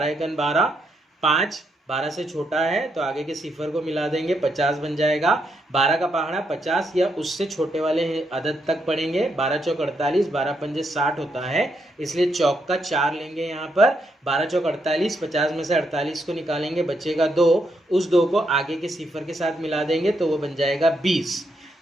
एकन 12, 5 12 से छोटा है तो आगे के सिफर को मिला देंगे, 50 बन जाएगा। 12 का पहाड़ा 50 या उससे छोटे वाले अदद तक पढ़ेंगे। 12 चौक 48, 12 पंजे 60 होता है, इसलिए चौक का 4 लेंगे यहाँ पर। 12 चौक 48, 50 में से 48 को निकालेंगे, बचेगा 2। उस 2 को आगे के सिफर के साथ मिला देंगे तो वो बन जाएगा 20।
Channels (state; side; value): normal; both; correlation 0.79